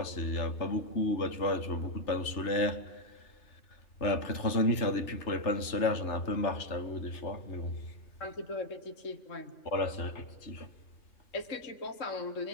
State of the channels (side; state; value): right; late; 3.3 ms